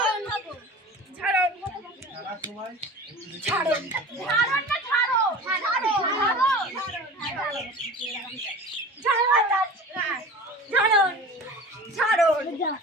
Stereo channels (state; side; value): normal; both; correlation 0.37